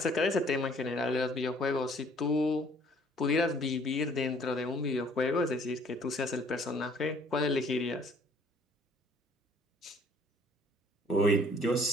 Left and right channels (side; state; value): both; normal; correlation 0.58